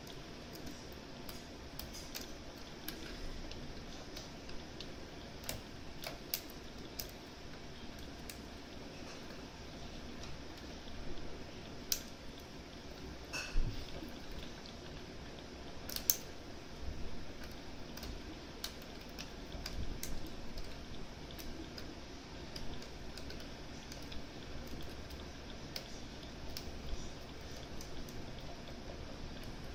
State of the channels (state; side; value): identical; both; correlation 1.00